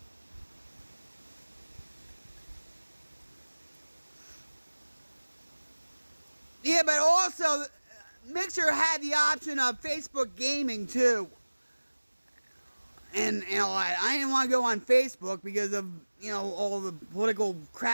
Yeah, but also, Mixer had the option of Facebook gaming too. And you know, I didn't want to go on Facebook because of, you know, all the political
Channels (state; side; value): inverted; both; correlation -1.00